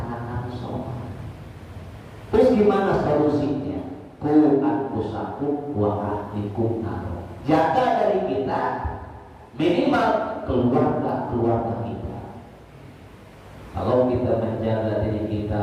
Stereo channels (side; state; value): both; identical; correlation 1.00